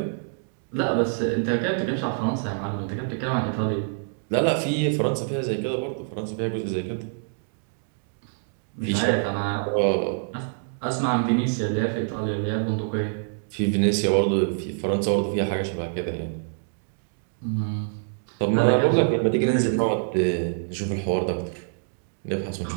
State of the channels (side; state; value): left; silent; digital silence